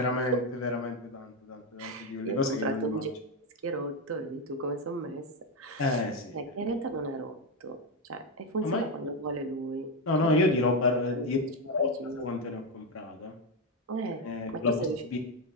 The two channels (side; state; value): both; normal; correlation 0.08